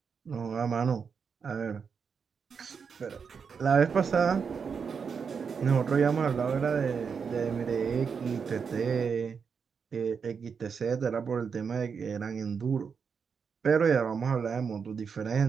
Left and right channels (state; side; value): quieter; left; 6.1 dB